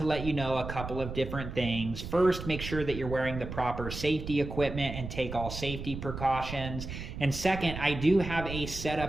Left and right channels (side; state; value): right; noise; rumble, 8 dB below the sound